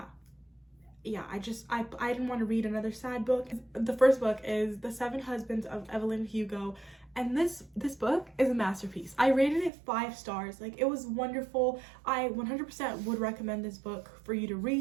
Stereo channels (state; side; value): drops out; left; at 9.7 s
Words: I didn't want to read another sad book. The first book is The Seven Husbands of Evelyn Hugo, and this book is a masterpiece. I rated it 5 stars. It was wonderful. I 100% would recommend this book for you to